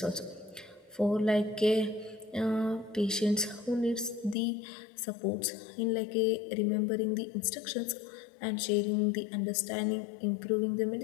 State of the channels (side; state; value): right; drops out; at 4.4 s